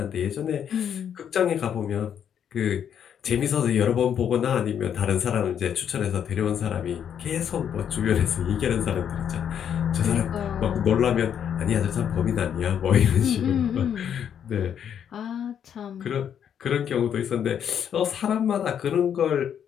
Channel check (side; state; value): right; quieter; 8.7 dB